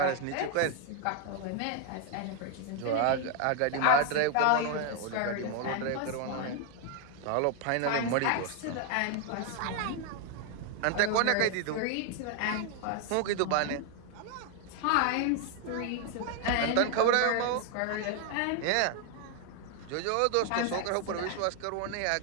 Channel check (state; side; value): different; both; correlation 0.01